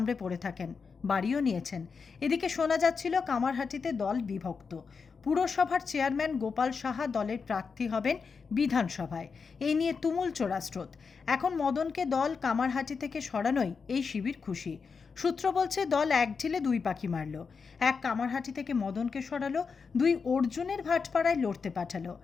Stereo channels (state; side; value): quieter; right; 5.3 dB